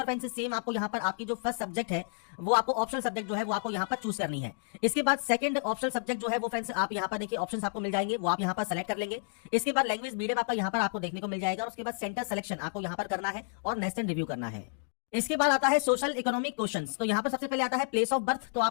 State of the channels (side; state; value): right; silent; digital silence